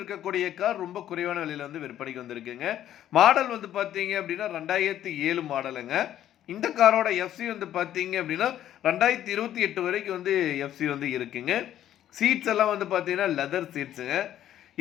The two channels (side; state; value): right; quieter; 11.6 dB